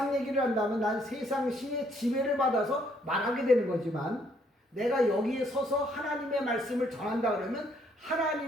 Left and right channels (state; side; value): normal; both; correlation 0.68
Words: 얘기를 한다면 난 세상 신의 지배를 받아서 말하게 되는 거지만 내가 여기에 서서 하나님의 말씀을 전한다 그러면